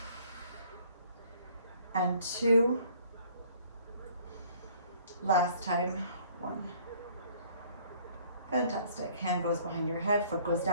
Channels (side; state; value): both; inverted; correlation -0.57